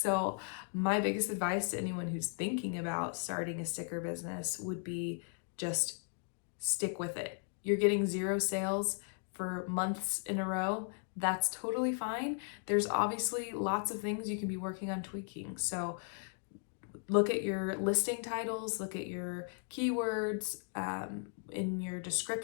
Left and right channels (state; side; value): silent; right; 53 dB below the other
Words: my biggest advice to anyone who's thinking about starting a sticker business would be just stick with it. You're getting 0 sales for months in a row. that's totally fine. There's obviously lots of things you can be working on tweaking. So look at your listing titles, look at your keywords, in your